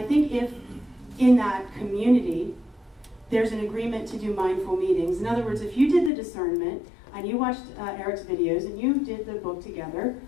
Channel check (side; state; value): right; drops out; at 6.1 s